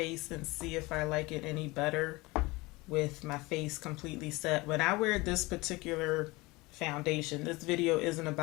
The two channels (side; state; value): right; quieter; 22.8 dB